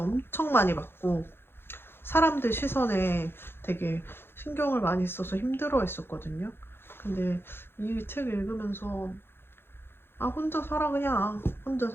많이 받고 사람들 시선에 되게 신경을 많이 써서 힘들어 했었거든요. 근데 이 책 읽으면서 아 혼자 살아 그냥 혼자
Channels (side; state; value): right; late; 0.11 ms